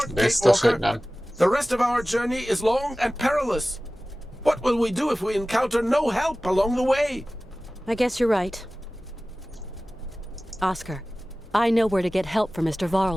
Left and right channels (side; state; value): both; normal; correlation 0.97